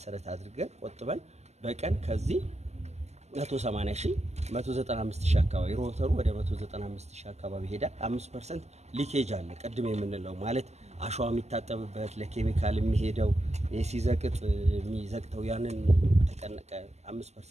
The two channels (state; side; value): late; left; 0.32 ms